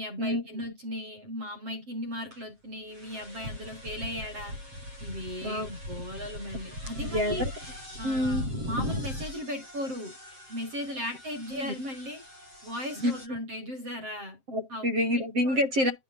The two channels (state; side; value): late; left; 7.6 ms